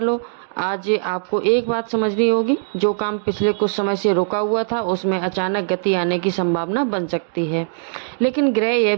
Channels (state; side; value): silent; left; digital silence